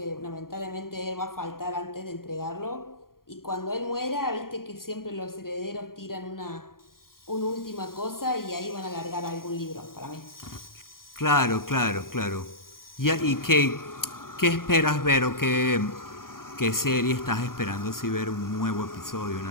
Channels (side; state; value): right; late; 0.91 ms